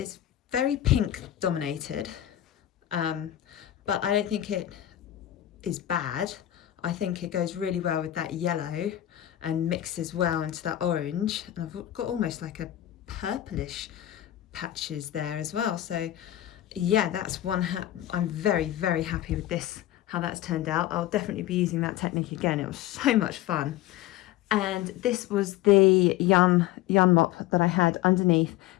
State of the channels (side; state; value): right; quieter; 13.4 dB